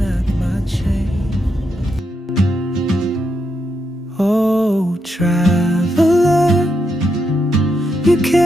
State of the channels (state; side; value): normal; both; correlation 0.82